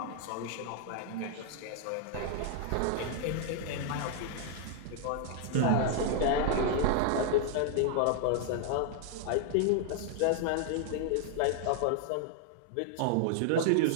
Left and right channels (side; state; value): both; different; correlation 0.00